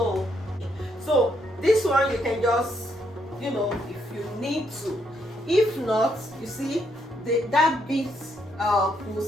this one you can just, if you need to. If not, you see, that bit will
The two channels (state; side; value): normal; both; correlation 0.75